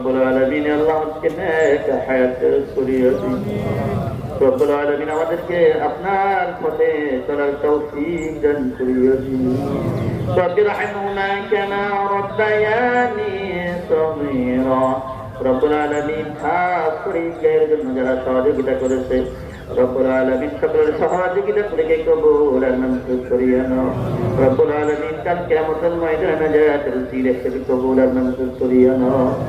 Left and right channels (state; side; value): identical; both; correlation 1.00